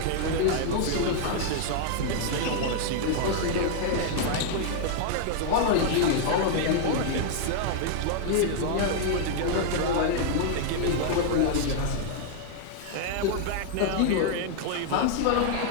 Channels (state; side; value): different; both; correlation -0.01